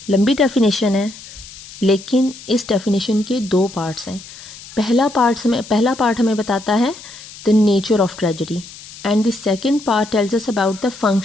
लंबी definition है, लेकिन इस definition के 2 parts हैं। पहला part हमें बताता है the nature of tragedy, and the second part tells us about the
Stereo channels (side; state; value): left; noise; hiss, 17 dB below the sound